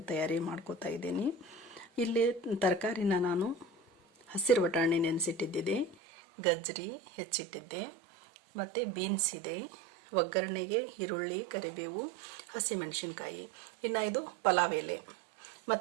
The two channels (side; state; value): left; drops out; at 6.0 s